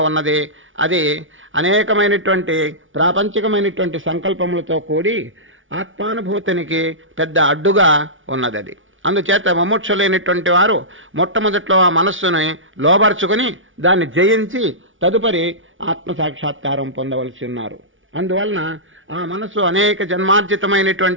ఉన్నది. అది అనేకమైనటువంటి ప్రాపంచికమైనటువంటి సంకల్పములతో కూడి ఆత్మానుభూతినికి పెద్ద అడ్డుగా ఉన్నది. అది అందుచేత ముముక్షులైనటువంటి వారు మొట్టమొదట్లో ఆ మనస్సుని లోబర్చుకుని దాన్ని జయించి తదుపరి ఆత్మసాక్షాత్కారం పొందవలసి ఉన్నారు. అందువలన ఆ మనస్సు అనేక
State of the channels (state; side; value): late; left; 0.57 ms